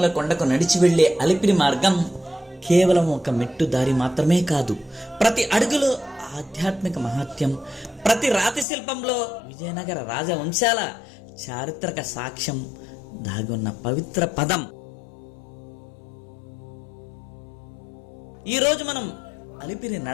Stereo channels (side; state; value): right; drops out; at 8.7 s